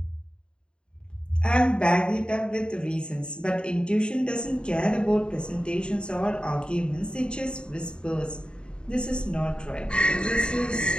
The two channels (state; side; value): late; right; 0.051 ms